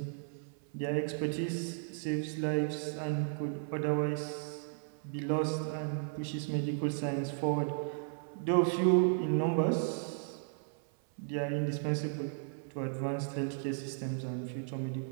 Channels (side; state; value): left; silent; 55 dB below the other